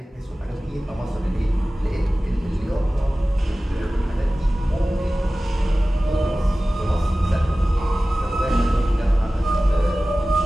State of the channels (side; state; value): both; normal; correlation 0.97